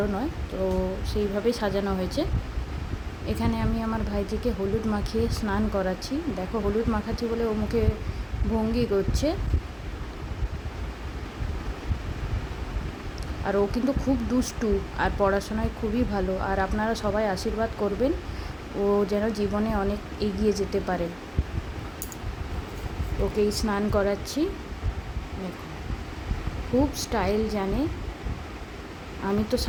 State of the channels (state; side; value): identical; both; correlation 1.00